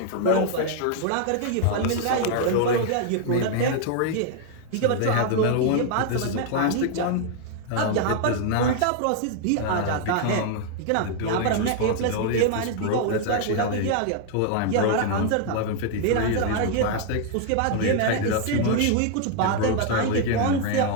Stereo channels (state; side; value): different; both; correlation 0.00